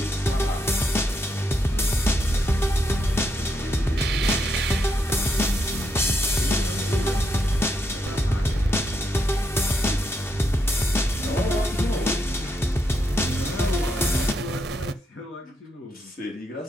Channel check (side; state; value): both; normal; correlation 0.79